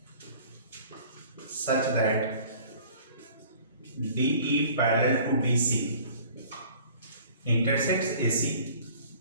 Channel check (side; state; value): both; inverted; correlation -0.50